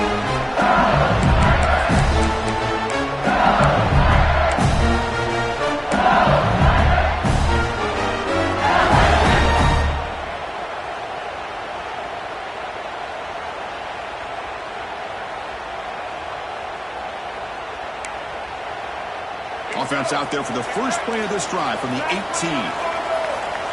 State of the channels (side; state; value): both; identical; correlation 1.00